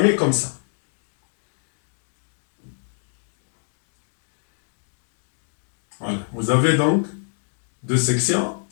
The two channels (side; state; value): right; silent; digital silence